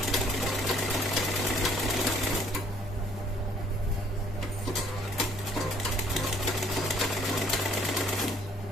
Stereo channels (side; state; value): both; normal; correlation 0.61